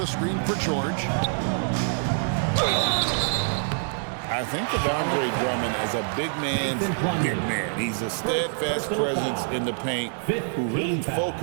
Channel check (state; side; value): silent; left; digital silence